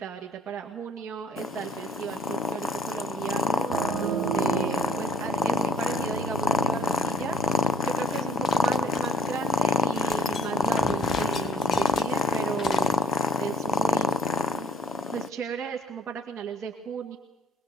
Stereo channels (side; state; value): both; normal; correlation 0.59